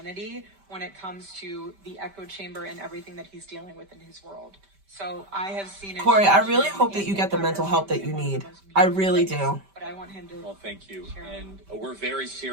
when it comes to the echo chamber and everything that he's dealing with in his world. So I have seen it. Corey, I change really him hope that and you get the impact mental our help that family you in one of the need. most I meaningful really ways. do. But I want him to. Well, thank you. share. And we're very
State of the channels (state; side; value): late; left; 5.1 ms